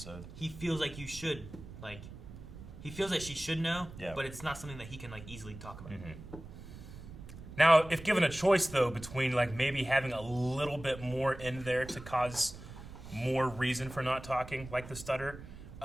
He feels like you should he feels like she should know. Yeah. But it's not something that he can easily talk about. Mm-hmm. Now, if given a choice though between maybe having a little bit more in there to cause more reason for not talking, the stutter.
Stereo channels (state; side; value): noise; right; rumble, 14 dB below the sound